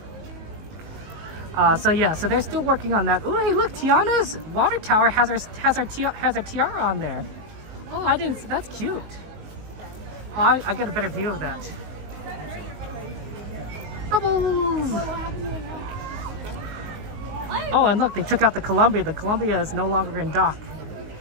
So yeah, so they're still working on that. Oh, hey, look, Tiana's water tower has her tiara on there. Oh, I didn't. That's cute. Oh, I get a better view of that. Bubbles. Oh, and look, they took out the Columbia. The Columbia is no longer in dock,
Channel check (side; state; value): left; late; 19 ms